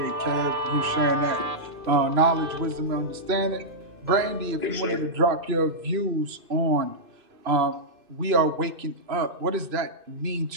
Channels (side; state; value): left; late; 2.6 ms